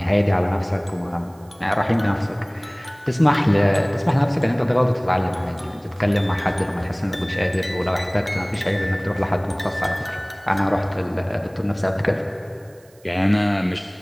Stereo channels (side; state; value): right; noise; hiss, 30 dB below the sound